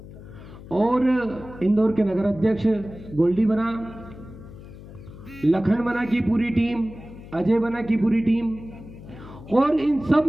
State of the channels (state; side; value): noise; left; hum, 16 dB below the sound